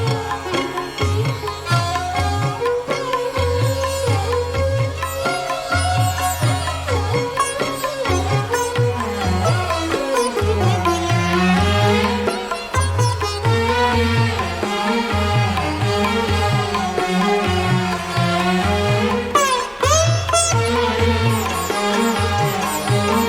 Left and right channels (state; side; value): identical; both; correlation 1.00